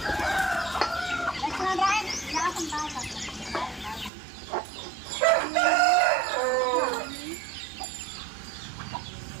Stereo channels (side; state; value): left; drops out; at 4.1 s